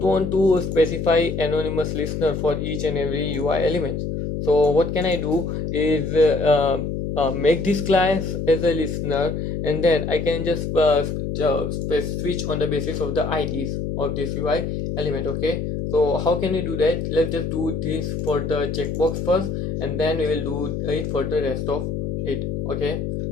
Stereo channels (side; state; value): left; noise; hum, 3 dB below the sound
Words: to specify anonymous listener for each and every UI element. So what can I do is make this class as a listener, and then I can just switch on the basis of the IDs of this UI element. Okay, so how can we do that? Let's just do this for the checkbox first, and then we will do it for the rest of it. Okay,